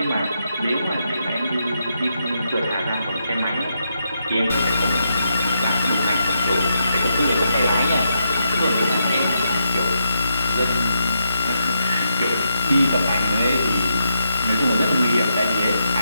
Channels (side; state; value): both; inverted; correlation -0.82